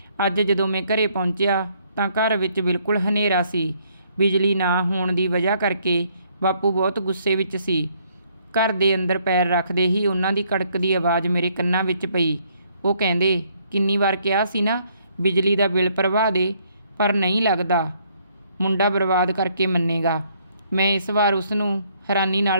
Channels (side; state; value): both; inverted; correlation -0.67